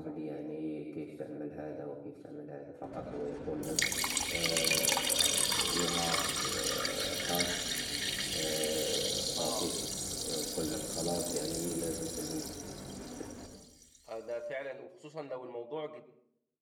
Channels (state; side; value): identical; both; correlation 1.00